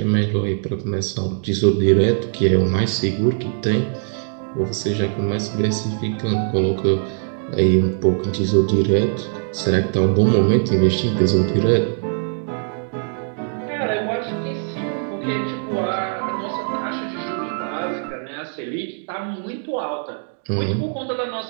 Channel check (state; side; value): silent; left; digital silence